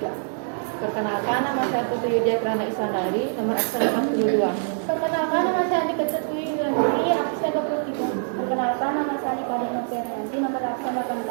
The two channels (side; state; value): left; silent; digital silence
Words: Perkenalkan, nama saya Putri Yudia Kirana Isandari, nomor absen 42. Perkenalkan, nama saya Andika Ketui Yandri, absen 23. Perkenalkan, nama saya Nikada Noperianti, nomor absen